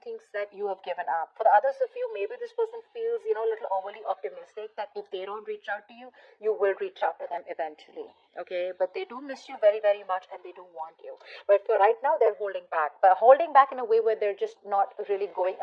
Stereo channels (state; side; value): identical; both; correlation 1.00